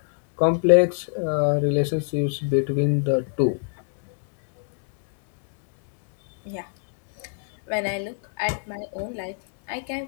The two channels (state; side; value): silent; right; digital silence